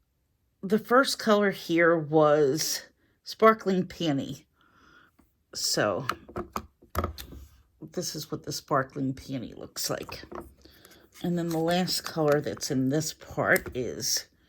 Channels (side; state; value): both; identical; correlation 1.00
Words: The first color here was Sparkling Peony. So this is what the Sparkling Peony looks like. And then the last color that's in this part is